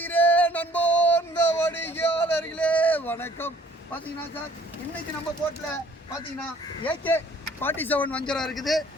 அன்போர்ந்த வாடிக்கையாளர்களே வணக்கம். பார்த்தீங்கன்னா சார், இன்னைக்கு நம்ம போட்டில் பார்த்தீங்கன்னா AK-47 வஞ்சரம் இருக்குது,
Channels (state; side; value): normal; both; correlation 0.57